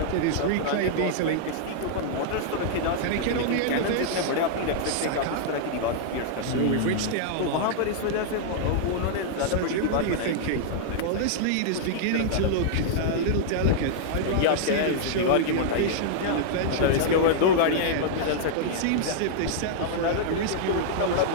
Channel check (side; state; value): both; different; correlation -0.01